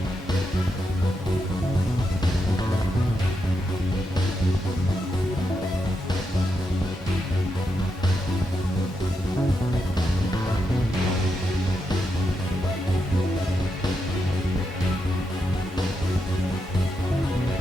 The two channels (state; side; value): normal; both; correlation 0.84